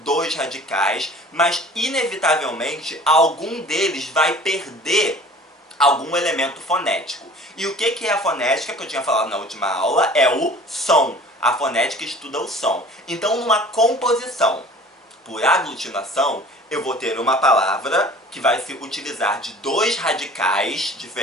dois radicais, mas inevitavelmente algum deles vai perder algum elemento fonético. E o que é a fonética que eu tinha falado na última aula? É o som. A fonética estuda o som. Então, numa composição por aglutinação, eu vou ter uma palavra que vai se utilizar de dois radicais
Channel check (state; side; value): normal; both; correlation 0.46